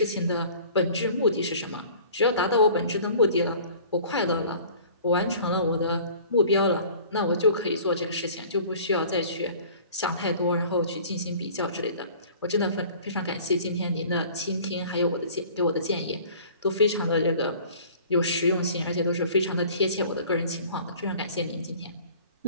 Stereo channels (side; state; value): both; inverted; correlation -0.47